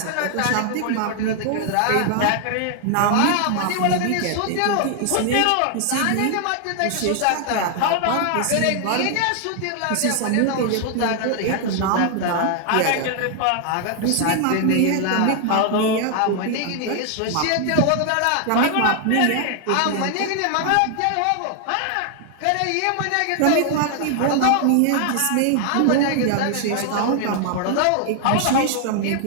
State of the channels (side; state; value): both; different; correlation 0.00